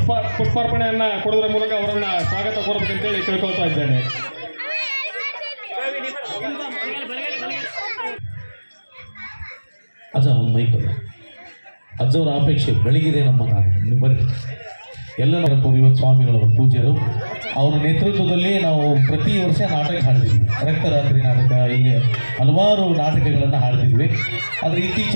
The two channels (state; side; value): inverted; both; correlation -1.00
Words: ಪುಷ್ಪಾರ್ಪಣೆಯನ್ನ ಕೊಡೋದ್ರ ಮೂಲಕ ಅವರನ್ನ ಸ್ವಾಗತ ಕೋರಬೇಕಂತೇಳಿ ಕೇಳ್ಕೊಳ್ತಾ ಇದ್ದೇನೆ. ಅಜ್ಜ ಒಂದು ಮೈಕ್ ಅಜ್ಜವರ ಅಪೇಕ್ಷೆ ಬೆಳಗಿದೆ ನಮ್ಮ ಬರ್ರಿ ಎಲ್ಲ ಇವತ್ತು ಸ್ವಾಮಿಗಳವರ ಪೂಜ್ಯರು ಅವರ ನೇತೃತ್ವದಲ್ಲಿ ನಾವು ಪ್ರತಿ ವರ್ಷ ನಾಟಕ ಹಾಡ್ತಿದ್ವಿ. ರಕ್ತರಾತ್ರಿ ನಾಟಕ, ಹೀಗೆ ಹಲವಾರು ನಾಟಕಗಳನ್ನು ಹಾಡ್ತಿದ್ವಿ. ಆದರೆ